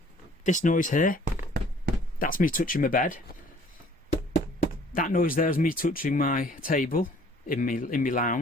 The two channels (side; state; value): both; normal; correlation 0.56